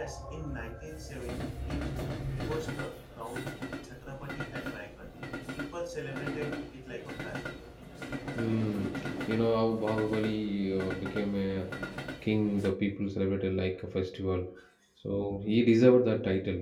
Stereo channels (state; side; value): identical; both; correlation 1.00